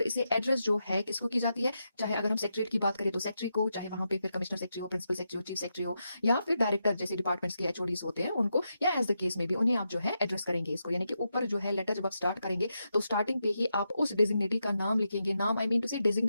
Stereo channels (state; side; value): inverted; both; correlation -0.85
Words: इसे एड्रेस जो है किसको की जाती है, चाहे अगर हम सेक्रेटरी की बात करें तो सेक्रेटरी को, चाहे वहां पे फिर कमिश्नर सेक्रेटरी हो, प्रिंसिपल सेक्रेटरी हो, चीफ सेक्रेटरी हो, या फिर डायरेक्टर जैसे डिपार्टमेंट्स के एचओडीज होते हैं उनको, या एज द केस में भी उन्हें आप जो है एड्रेस करेंगे इसको। यानी कि ऊपर जो है लेटर जब आप स्टार्ट करेंगे तो स्टार्टिंग पे ही आप उस डेजिग्नेटी का नाम लिखेंगे, नाम आई मीन टू से